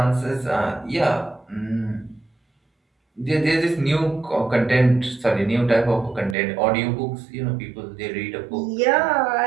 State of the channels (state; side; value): drops out; left; at 6.4 s